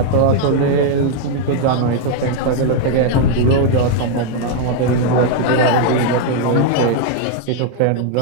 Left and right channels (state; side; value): different; both; correlation 0.00